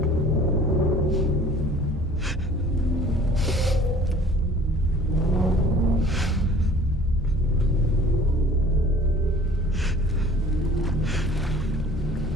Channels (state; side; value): normal; both; correlation 0.49